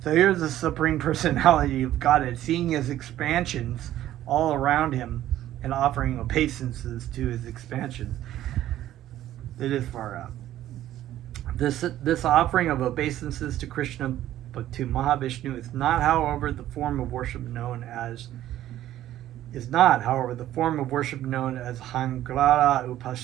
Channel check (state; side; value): quieter; left; 13.1 dB